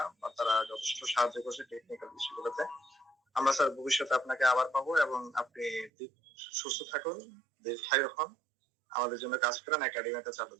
তারা যথেষ্ট সাহায্য করছে টেকনিক্যাল বিষয়গুলোতে। আমরা স্যার ভবিষ্যতে আপনাকে আবার পাবো, এবং আপনি সুস্থ থাকুন, দীর্ঘায়ু হন, আমাদের জন্য কাজ করেন, একাডেমিতে চালু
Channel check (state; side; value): drops out; left; at 5.9 s